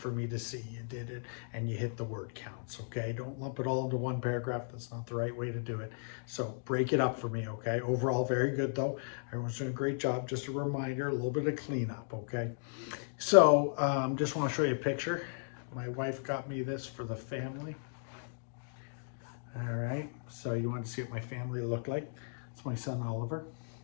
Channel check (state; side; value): silent; right; digital silence